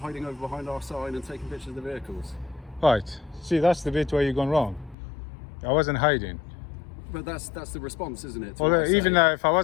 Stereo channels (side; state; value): right; drops out; at 5.0 s